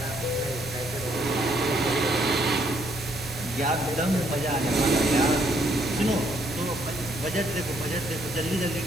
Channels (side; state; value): both; normal; correlation 0.69